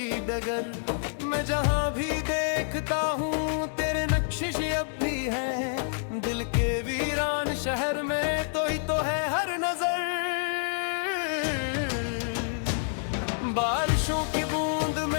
डगर। मैं जहाँ भी देखता हूँ तेरे नक्शिश अब भी हैं। दिल के वीरान शहर में तो ही तो है हर नजर। बारिशों की बूंद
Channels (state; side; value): silent; right; digital silence